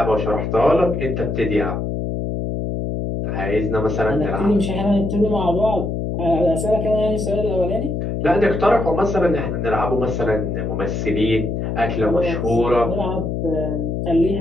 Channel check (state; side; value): noise; left; hum, 2 dB below the sound